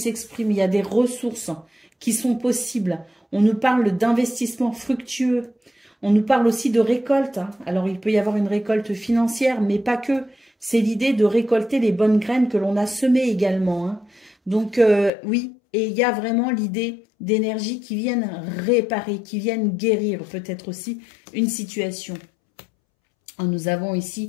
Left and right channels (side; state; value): right; drops out; at 15.1 s